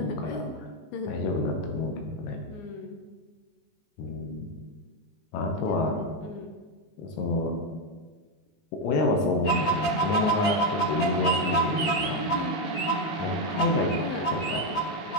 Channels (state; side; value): late; right; 19 ms